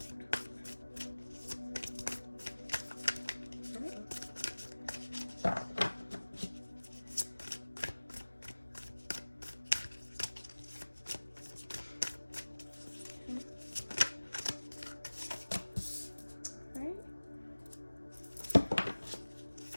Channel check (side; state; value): both; inverted; correlation -1.00